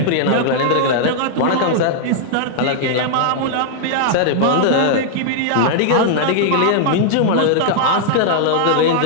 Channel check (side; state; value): both; different; correlation -0.01